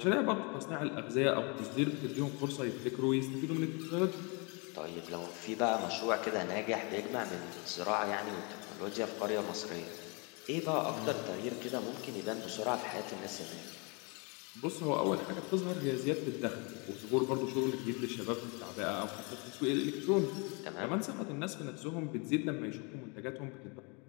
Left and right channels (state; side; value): quieter; right; 32.0 dB